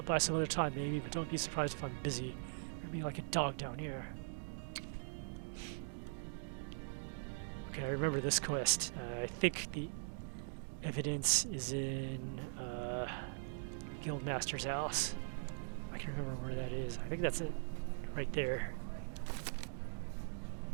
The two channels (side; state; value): left; silent; digital silence